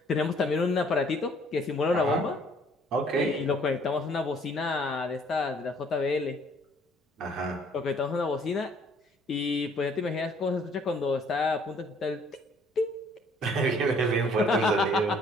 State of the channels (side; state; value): both; normal; correlation 0.60